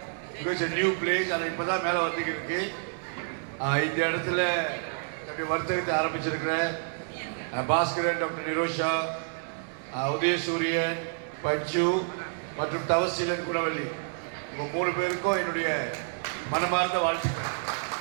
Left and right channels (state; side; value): silent; left; 59 dB below the other